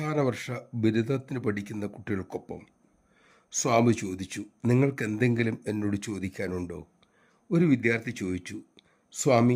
വർഷ ബിരുദത്തിന് പഠിക്കുന്ന കുട്ടികൾക്കൊപ്പം. സ്വാമി ചോദിച്ചു, നിങ്ങൾക്ക് എന്തെങ്കിലും എന്നോട് ചോദിക്കാനുണ്ടോ? ഒരു വിദ്യാർത്ഥി ചോദിച്ചു,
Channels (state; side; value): identical; both; correlation 1.00